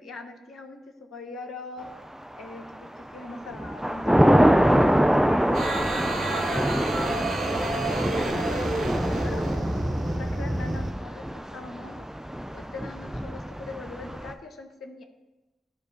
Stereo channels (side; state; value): both; normal; correlation 0.94